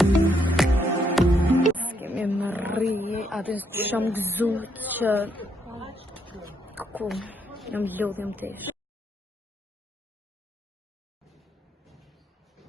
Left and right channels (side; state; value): both; normal; correlation 0.74